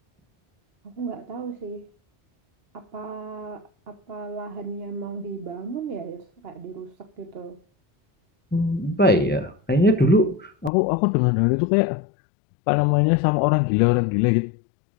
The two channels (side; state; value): right; drops out; at 10.7 s